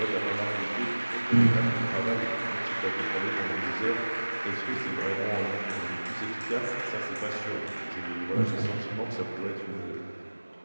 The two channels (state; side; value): inverted; both; correlation -1.00